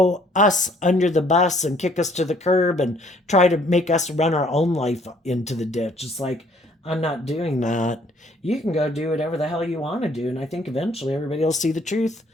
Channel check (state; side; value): normal; both; correlation 0.62